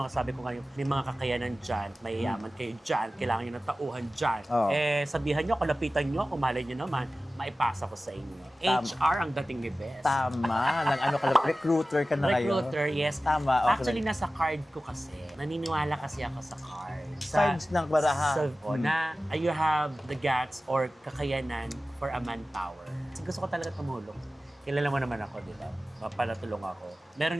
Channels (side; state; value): both; normal; correlation 0.96